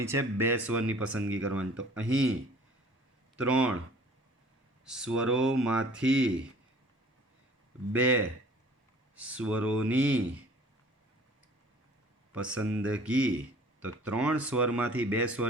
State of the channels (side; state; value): both; normal; correlation 0.50